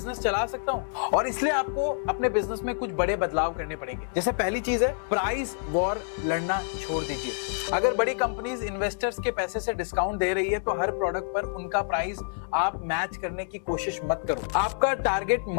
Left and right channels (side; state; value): right; silent; digital silence